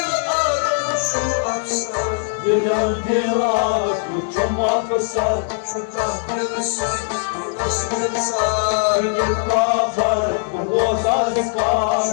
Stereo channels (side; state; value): right; silent; digital silence